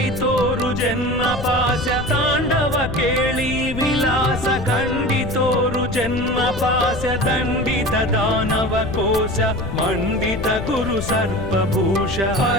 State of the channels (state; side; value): noise; left; rumble, 8 dB below the sound